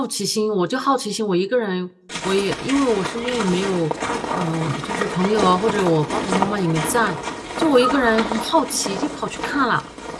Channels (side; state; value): both; identical; correlation 1.00